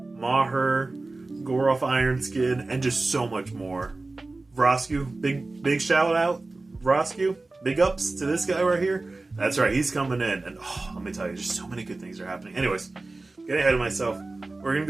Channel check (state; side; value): quieter; left; 3.3 dB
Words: Maher, Goroth Ironskin, and just so much more. Vrosku, big shout out, Vrosku. Big ups to this guy right here. That's right, he's coming in. And let me tell you, just so many good things are happening. Anyways, getting ahead of myself, we're going